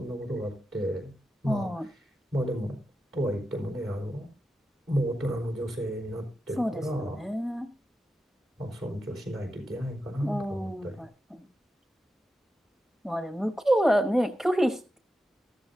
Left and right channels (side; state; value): both; normal; correlation 0.89